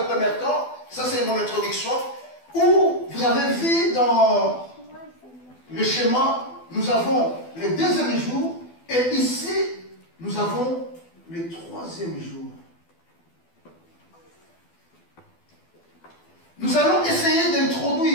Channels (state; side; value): late; right; 12 ms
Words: premier temps, ça c'est mon introduction, où vous avez vu dans le schéma, nous avons le deuxième jour, et ici, nous avons le troisième jour. Nous allons essayer